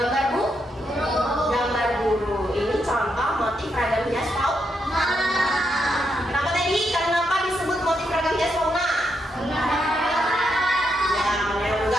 gambar guru. Ini contoh motif ragam hias fauna. Kenapa tadi? Kenapa disebut motif ragam hias fauna? Ya,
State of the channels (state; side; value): normal; both; correlation 0.81